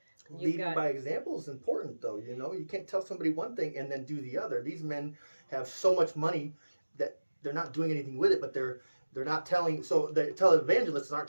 Leading by example is important, though. You know, you can't tell somebody one thing and then do the other. These men have so much money that they're not doing anything with it, but they're not telling. So the televangelists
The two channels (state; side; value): inverted; both; correlation -1.00